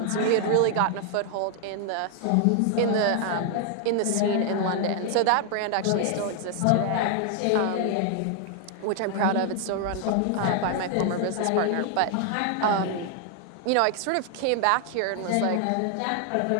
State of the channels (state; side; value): different; both; correlation 0.00